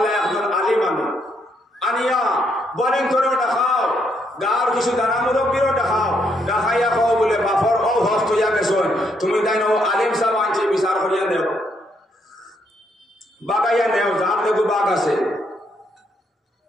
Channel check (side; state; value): both; normal; correlation 0.74